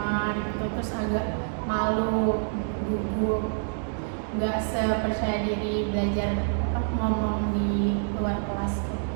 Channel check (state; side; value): silent; left; digital silence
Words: gitu, terus agak malu, gugup, nggak sepercaya diri belajar ngomong di luar kelas tuh.